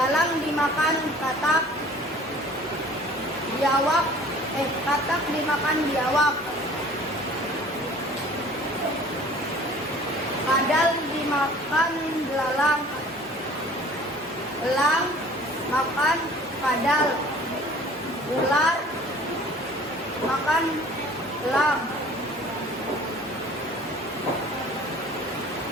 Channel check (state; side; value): normal; both; correlation 0.49